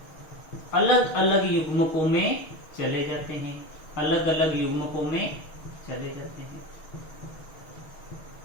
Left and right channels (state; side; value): late; right; 6.3 ms